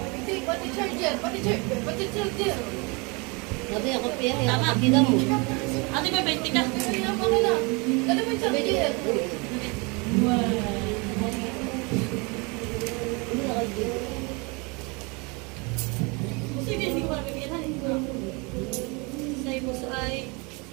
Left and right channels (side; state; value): left; quieter; 29.3 dB